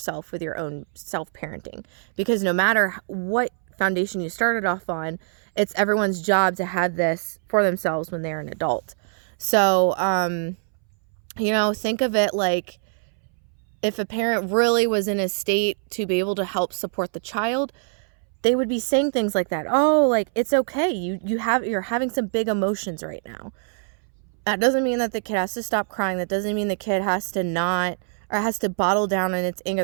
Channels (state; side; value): silent; left; 63 dB below the other